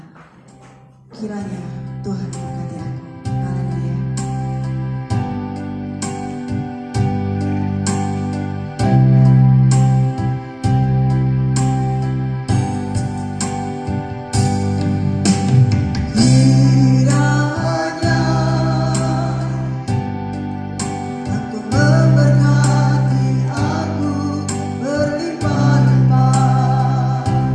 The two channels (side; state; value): both; identical; correlation 1.00